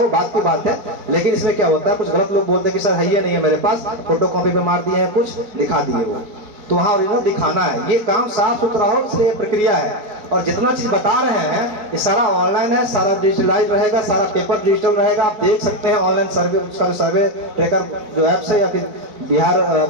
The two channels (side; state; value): left; late; 4.8 ms